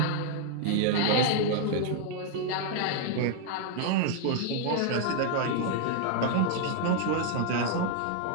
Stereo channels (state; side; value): different; both; correlation 0.00